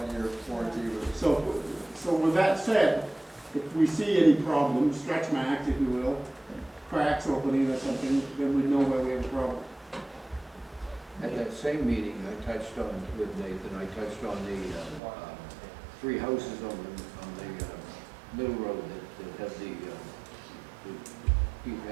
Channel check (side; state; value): left; drops out; at 15.0 s